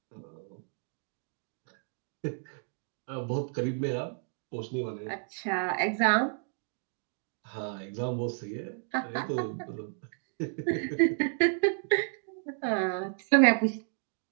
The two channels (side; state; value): left; silent; 57 dB below the other